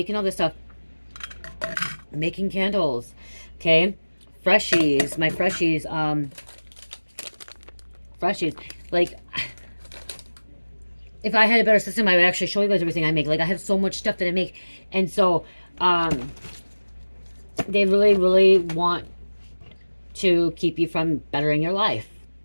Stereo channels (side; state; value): both; inverted; correlation -1.00